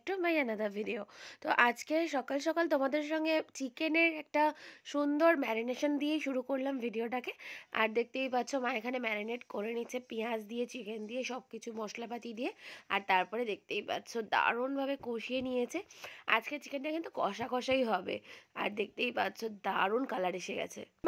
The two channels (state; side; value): identical; both; correlation 1.00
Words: to my another video. তো আজকে সকাল সকাল তোমাদের সঙ্গে চিকেনের একটা সুন্দর ম্যারিনেশন দিয়ে শুরু করলাম ভিডিওটাকে। আর দেখতেই পাচ্ছ মা এখানে ম্যারিনেট করে নিচ্ছে পেঁয়াজ দিয়ে, চিকেন দিয়ে, সব কিছু মশলাপাতি দিয়ে। আর তারপরে দেখতেই পাচ্ছ দারুণভাবে কষিয়ে নিয়েছে। আজকে চিকেনটা কিন্তু কষা কষাই হবে। আর দেখতেই পাচ্ছ দারুণ কালার এসে গেছে।